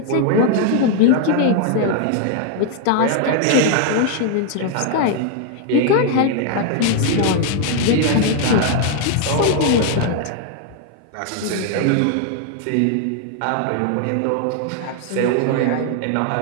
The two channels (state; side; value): different; both; correlation 0.00